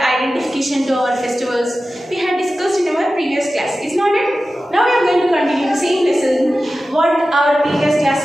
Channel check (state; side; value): normal; both; correlation 0.94